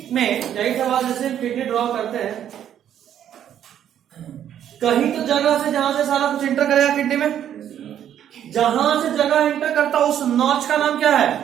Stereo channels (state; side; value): quieter; left; 10.2 dB